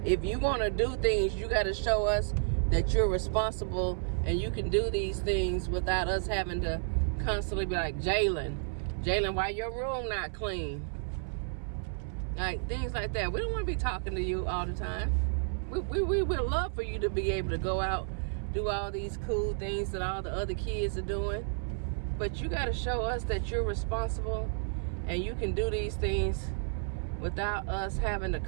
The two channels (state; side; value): silent; left; 57 dB below the other